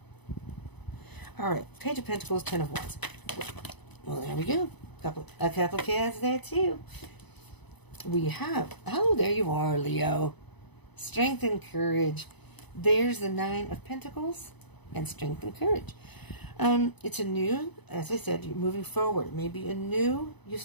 All right, Page of Pentacles, Ten of Wands. Well, there we go. A couple cards there too. We have, there you are, Leo. Strength and courage. There's the Nine of Pentacles and strength and courage. It's a new, as I said, you're moving forward. Maybe you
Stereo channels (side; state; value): right; late; 0.99 ms